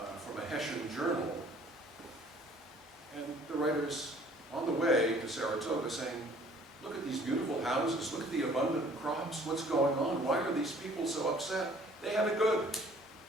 a Hessian journal, and the writer's on the way to Saratoga saying, look at these beautiful houses, look at the abundant crops, what's going on? Why are these people so upset? They have it good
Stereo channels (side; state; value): both; normal; correlation 0.55